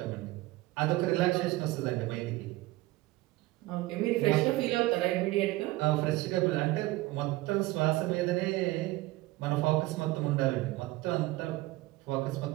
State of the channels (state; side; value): quieter; left; 19.0 dB